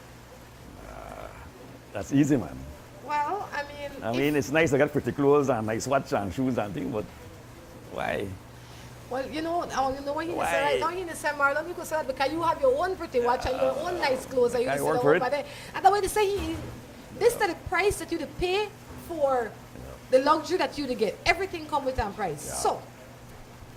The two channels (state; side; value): identical; both; correlation 1.00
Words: That's easy, man. Well, I mean, it's nice to get pretty clothes and nice watch and shoes and things, but why? Well, you know what you Why? say right now, you say, Marlon, you could say that because you have your own pretty watch and your own nice clothes. And you I say, work "Oh, for it." but and the way they say, this is the price that you to pay for the luxury that you to get. Everything comes with a price. Yeah. So,